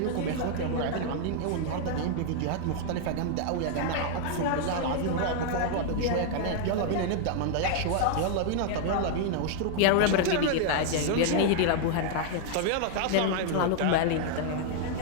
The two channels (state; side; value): different; both; correlation 0.00